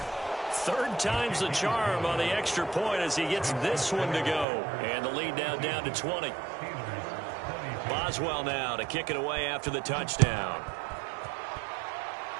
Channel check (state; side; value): drops out; left; at 4.5 s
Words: Third time's the charm on the extra point as he gets this one to go. And the lead now down to 20. Boswell now to kick it away after the touchdown.